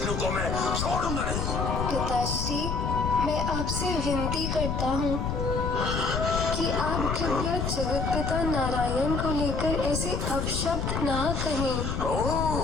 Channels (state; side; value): noise; left; rumble, 1 dB below the sound